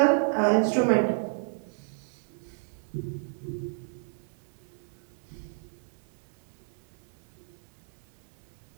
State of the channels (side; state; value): left; silent; digital silence